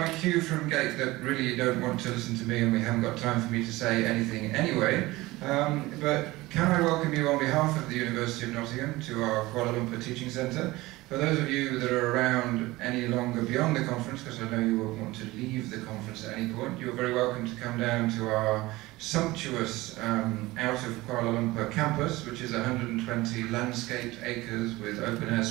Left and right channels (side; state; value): left; quieter; 19.7 dB